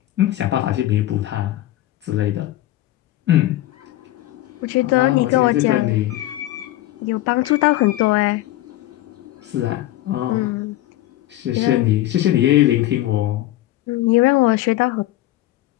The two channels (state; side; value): quieter; right; 15.4 dB